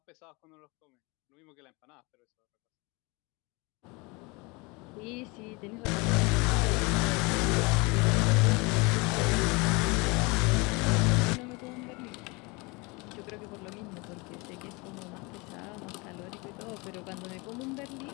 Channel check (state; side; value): quieter; right; 27.0 dB